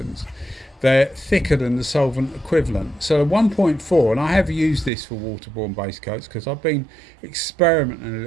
they're thicker than the solvent equivalent. So the 1.4, and I have used this for waterborne base coats because I've been experimenting a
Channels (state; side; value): drops out; left; at 4.9 s